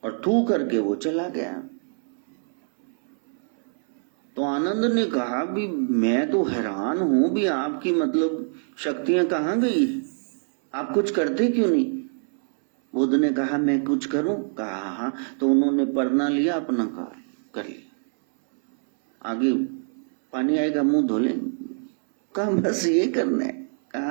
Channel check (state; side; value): silent; left; 61 dB below the other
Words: और थूक करके वो चला गया। तो आनंद ने कहा भी मैं तो हैरान हूं भी, आपकी मतलब शक्तियां कहां गई, आप कुछ करते क्यों नहीं? बुद्ध ने कहा मैं कुछ करूं? कहा हाँ। तो उन्होंने परना लिया, अपना कर लिया, आगे पानी आएगा मुंह धो लेंगे। कहा बस ये करना है?